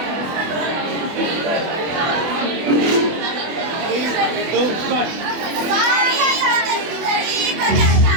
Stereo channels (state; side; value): late; left; 24 ms